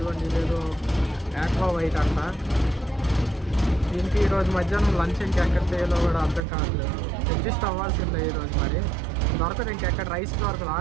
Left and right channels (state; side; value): drops out; left; at 6.5 s